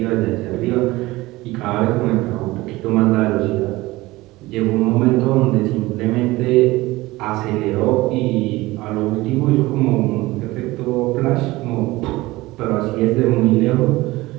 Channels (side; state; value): left; quieter; 19.6 dB